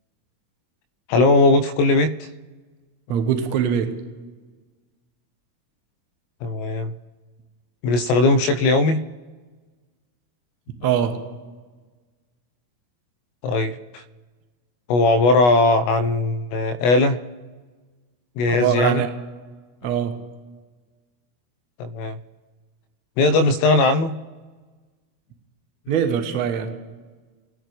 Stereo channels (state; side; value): late; right; 25 ms